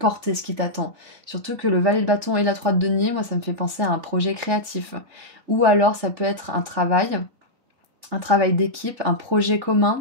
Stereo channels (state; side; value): late; left; 3.9 ms